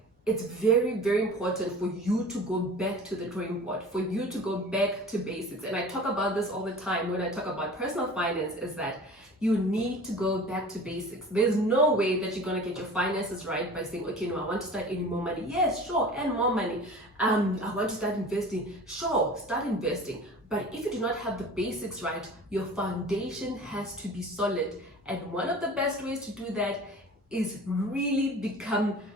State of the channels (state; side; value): normal; both; correlation 0.40